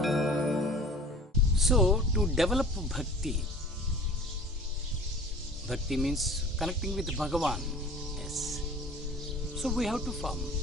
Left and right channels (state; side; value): normal; both; correlation 0.44